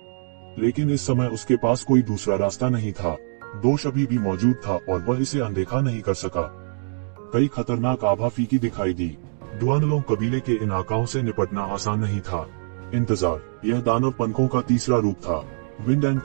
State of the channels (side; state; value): left; silent; digital silence